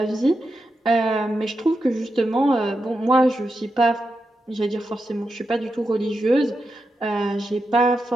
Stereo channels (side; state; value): both; normal; correlation 0.87